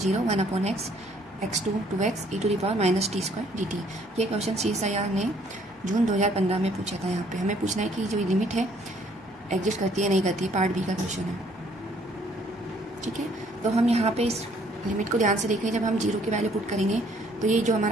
1 upon x x2 2x e to the power minus t square dt। ये क्वेश्चन CSIR ने जून 2015 में पूछा था। यहाँ पे हमें पूछना है कि जो लिमिट है एग्जिस्ट करती है नहीं करती है। पार्ट बी का क्वेश्चन है, ठीक है। तो हम यहाँ पे इस लिमिट को ध्यान से देखें। जब हम 0 की वैल्यू पुट करेंगे तो ये जो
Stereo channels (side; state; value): both; normal; correlation 0.63